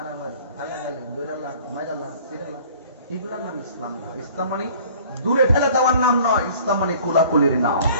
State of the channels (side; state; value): both; inverted; correlation -0.51